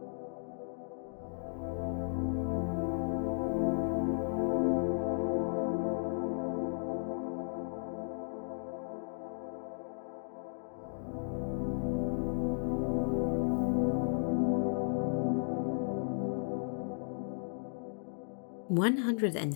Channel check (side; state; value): right; silent; digital silence